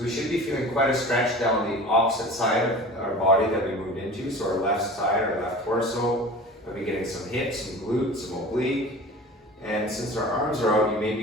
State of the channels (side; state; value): both; normal; correlation 0.38